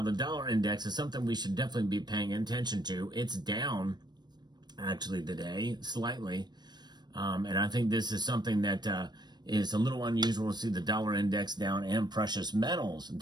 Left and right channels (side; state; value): left; late; 0.21 ms